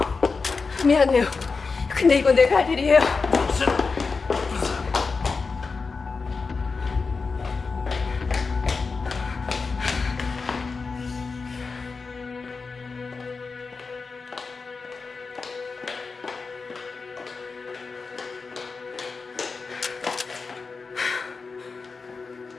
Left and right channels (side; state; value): right; quieter; 4.5 dB